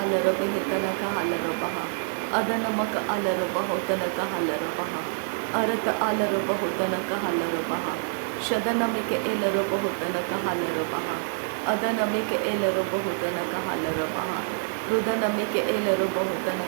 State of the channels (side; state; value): left; silent; digital silence